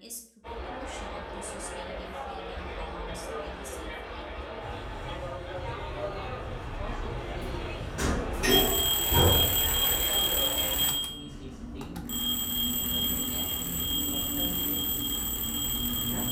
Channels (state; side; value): identical; both; correlation 1.00